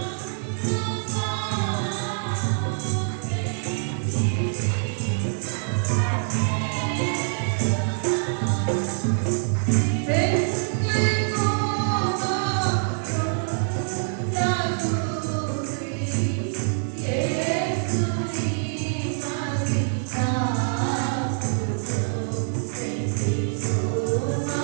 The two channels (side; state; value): left; silent; 62 dB below the other